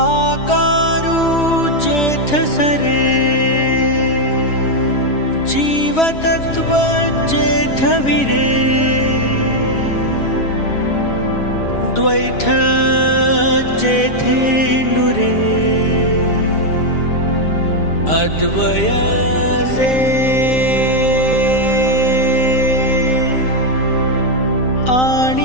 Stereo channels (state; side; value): late; right; 6.9 ms